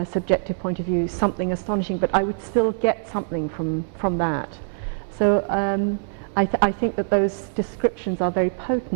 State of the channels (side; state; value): left; silent; digital silence